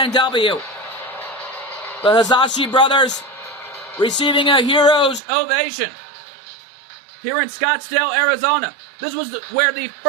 the Hisashi brothers receiving a hero's ovation here in Scottsdale, Arizona. This was where the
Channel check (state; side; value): drops out; left; at 5.2 s